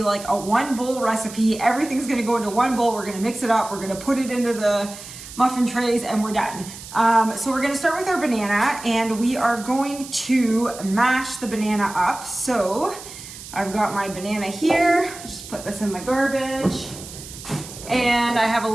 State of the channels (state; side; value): noise; right; hiss, 14 dB below the sound